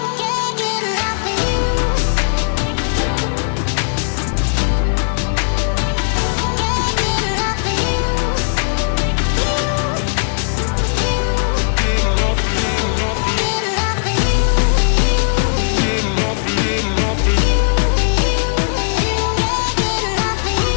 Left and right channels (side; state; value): right; silent; digital silence